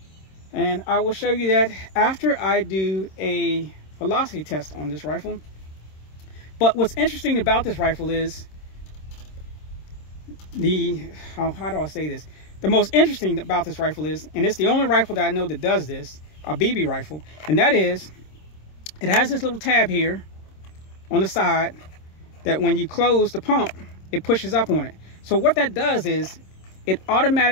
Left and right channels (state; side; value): late; right; 26 ms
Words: And I will show you that after I do a velocity test on this rifle. But what's interesting about this rifle is how do I say this? The most interesting about this rifle is, and it's the only rifle that I know that does this, a BB rifle, and that is, it has this little tab here on the side that when you close the pump, it pushes up on it. So what that does is, it